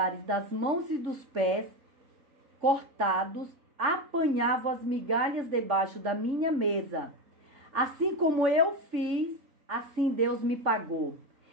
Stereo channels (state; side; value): late; left; 3.6 ms